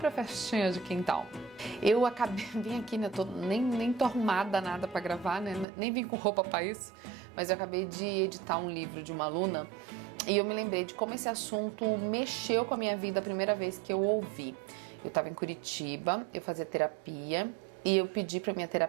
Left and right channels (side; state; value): left; drops out; at 5.7 s